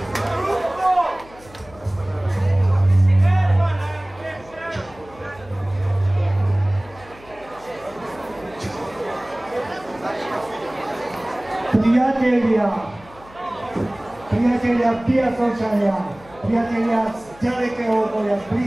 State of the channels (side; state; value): left; noise; hum, 23 dB below the sound